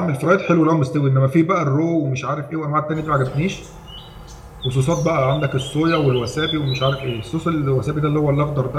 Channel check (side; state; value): both; identical; correlation 1.00